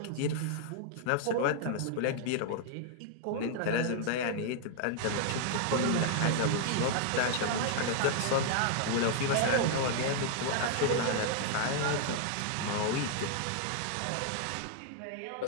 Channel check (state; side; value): different; both; correlation -0.01